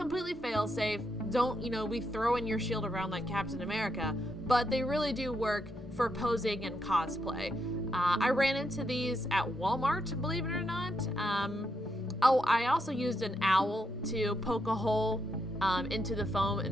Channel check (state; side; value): normal; both; correlation 0.80